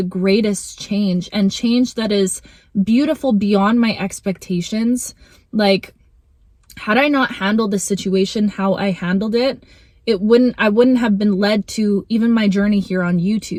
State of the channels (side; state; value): both; identical; correlation 1.00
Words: greatest change, and change that is beautiful beyond my expectations, like, had I not handled the situation how I handled it, I wouldn't have been led to even my journey here on